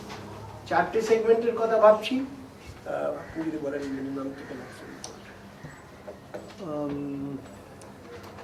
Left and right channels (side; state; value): both; identical; correlation 1.00